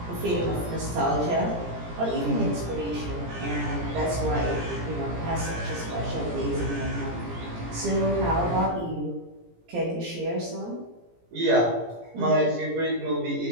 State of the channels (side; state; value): left; late; 17 ms